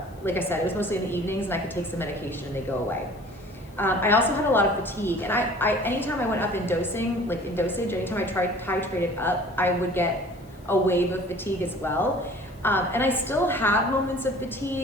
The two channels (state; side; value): noise; left; hiss, 29 dB below the sound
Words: Like I said, it was mostly in the evenings, and I could take some medication and they go away. I also had a lot of fatigue, and I anytime I went up in dosage, anytime I titrated up, I would get a wave of fatigue as well. And I still have moments of